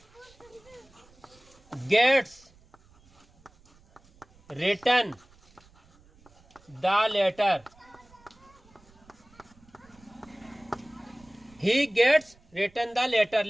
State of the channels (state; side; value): noise; right; rumble, 28 dB below the sound